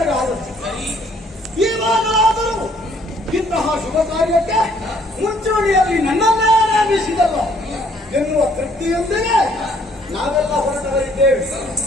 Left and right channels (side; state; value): both; normal; correlation 0.63